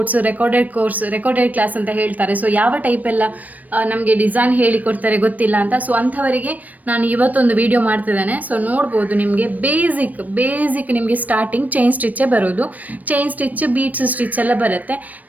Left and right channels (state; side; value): late; left; 0.077 ms